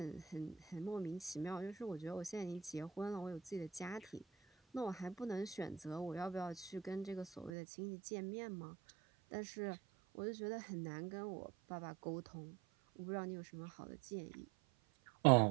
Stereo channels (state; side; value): drops out; left; at 7.5 s